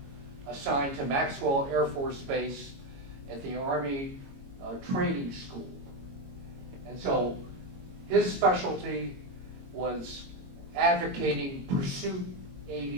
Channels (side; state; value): left; late; 22 ms